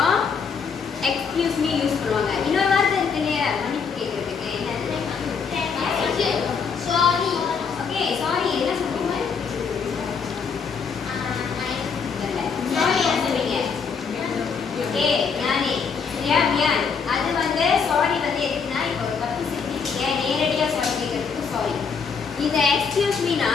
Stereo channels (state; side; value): quieter; right; 5.9 dB